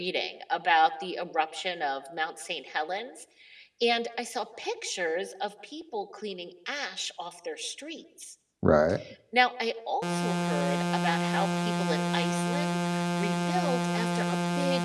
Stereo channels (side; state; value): both; identical; correlation 1.00